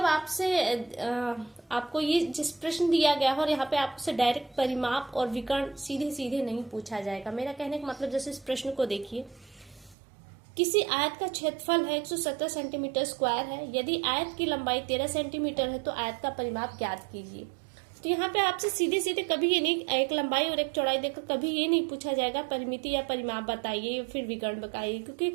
आपसे आपको ये जिस प्रश्न दिया गया है और यहाँ पे आपसे डायरेक्ट परिमाप और विकर्ण सीधे सीधे नहीं पूछा जाएगा। मेरा कहने का मतलब, जैसे इस प्रश्न को देखिए, किसी आयत का क्षेत्रफल है 117 सेंटीमीटर स्क्वायर है। यदि आयत की लंबाई 13 सेंटीमीटर है तो आयत का परिमाप ज्ञात कीजिए। तो यहाँ पे आपसे सीधे सीधे कभी ये नहीं, एक लंबाई और एक चौड़ाई देकर कभी ये नहीं पूछा जाएगा परिमिति या परिमाप बताइए या फिर विकर्ण बताइए, क्योंकि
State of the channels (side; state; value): left; drops out; at 10.0 s